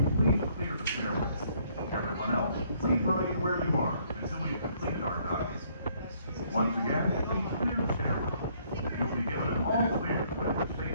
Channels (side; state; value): both; inverted; correlation -0.65